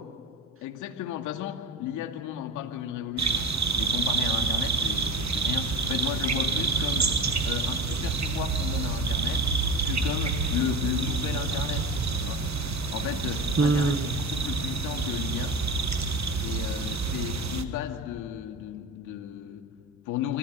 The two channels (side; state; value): both; normal; correlation 0.26